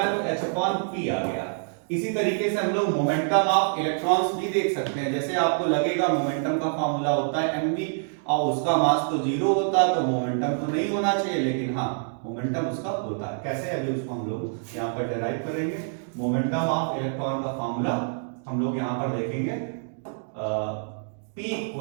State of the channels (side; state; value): left; silent; digital silence